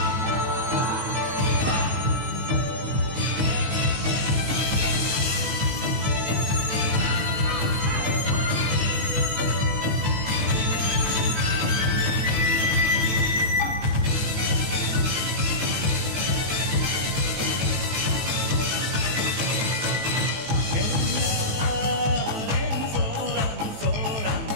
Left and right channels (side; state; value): left; late; 18 ms